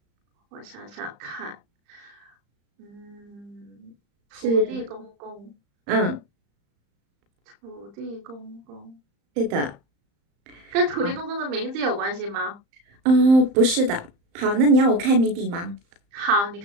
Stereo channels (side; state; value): left; late; 35 ms